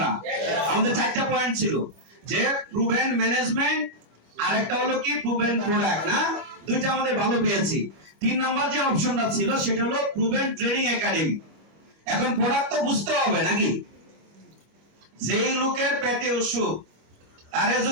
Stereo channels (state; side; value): late; left; 25 ms